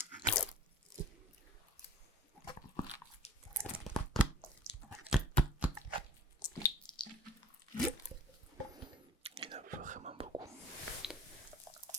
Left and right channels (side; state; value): both; normal; correlation 0.48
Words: Il y en a vraiment beaucoup.